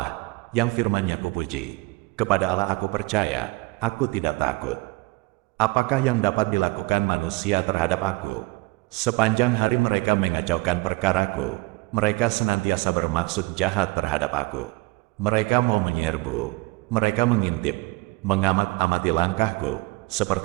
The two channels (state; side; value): quieter; left; 24.6 dB